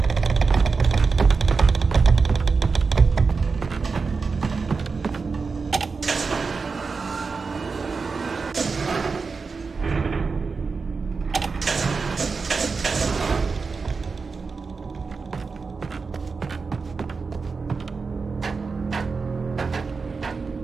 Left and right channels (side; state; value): left; quieter; 4.7 dB